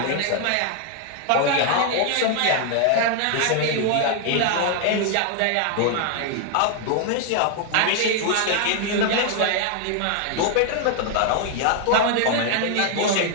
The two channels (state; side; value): different; both; correlation 0.00